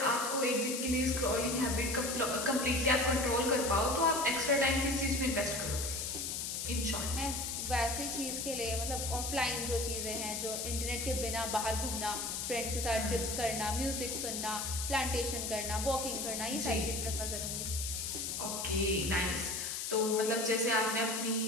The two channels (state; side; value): noise; left; hiss, 3 dB below the sound